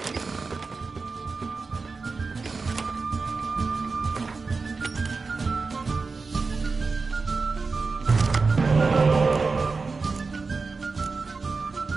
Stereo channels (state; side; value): quieter; left; 4.3 dB